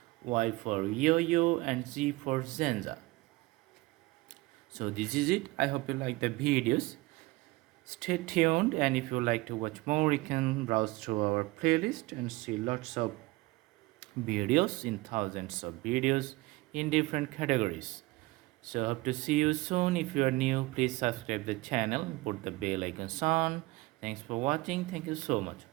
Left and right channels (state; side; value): quieter; left; 21.5 dB